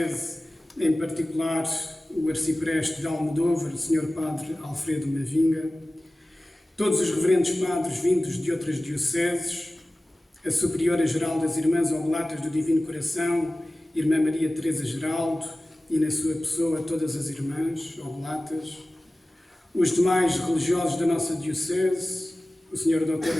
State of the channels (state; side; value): normal; both; correlation 0.97